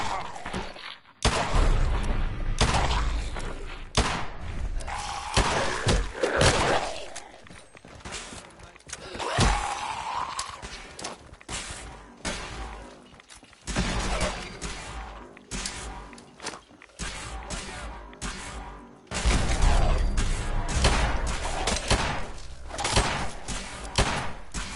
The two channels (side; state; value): both; identical; correlation 1.00